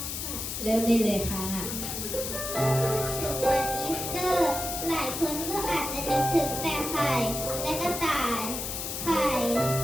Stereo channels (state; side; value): noise; left; hiss, 4 dB below the sound